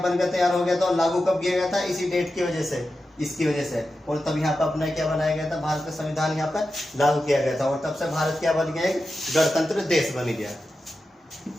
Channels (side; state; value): both; normal; correlation 0.91